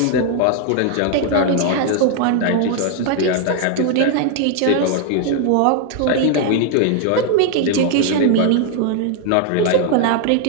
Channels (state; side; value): different; both; correlation 0.00